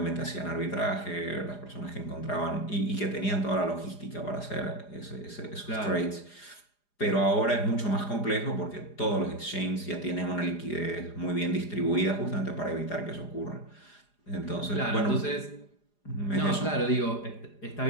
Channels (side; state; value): right; late; 4.9 ms